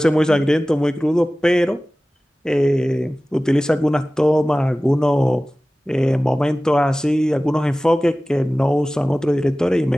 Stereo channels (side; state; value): both; normal; correlation 0.97